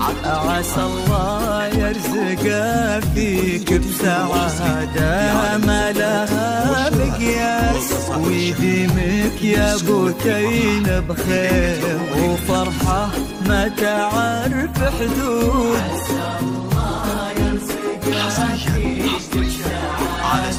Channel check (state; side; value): identical; both; correlation 1.00